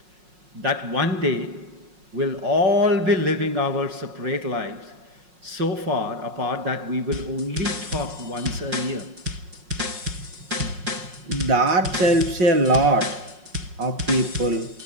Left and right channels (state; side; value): late; left; 5.5 ms